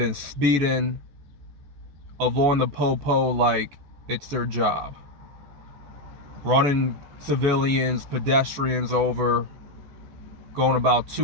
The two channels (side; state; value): left; late; 14 ms